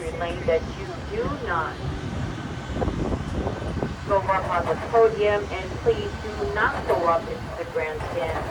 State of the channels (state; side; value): identical; both; correlation 1.00